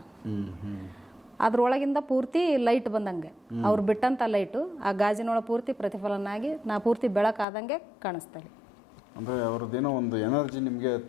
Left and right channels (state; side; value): drops out; right; at 7.5 s